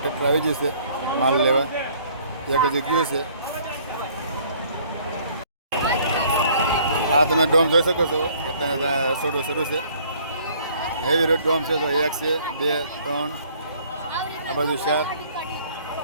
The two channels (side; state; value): both; inverted; correlation -0.59